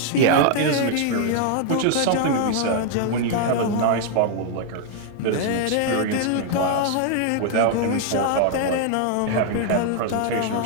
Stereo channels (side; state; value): both; different; correlation 0.00